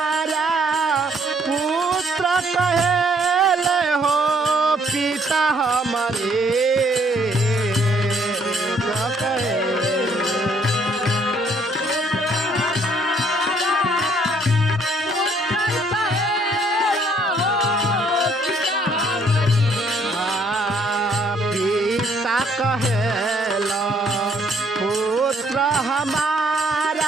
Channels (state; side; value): normal; both; correlation 0.65